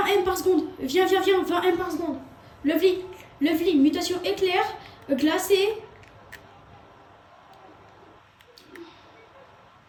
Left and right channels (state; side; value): identical; both; correlation 1.00